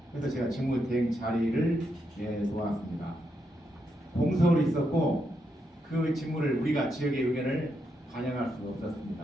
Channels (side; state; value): both; normal; correlation 0.81